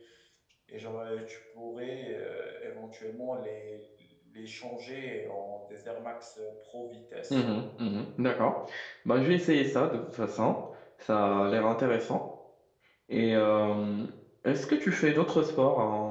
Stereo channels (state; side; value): identical; both; correlation 1.00